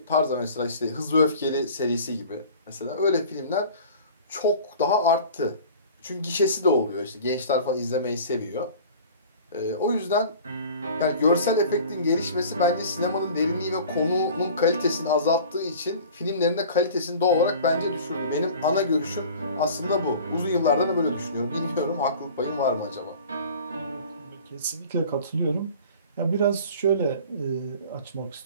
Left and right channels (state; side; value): inverted; both; correlation -0.43